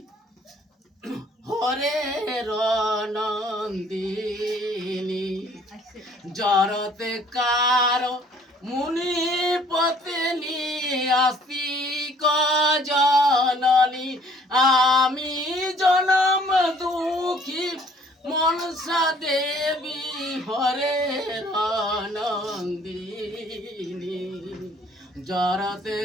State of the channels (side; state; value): both; normal; correlation 0.58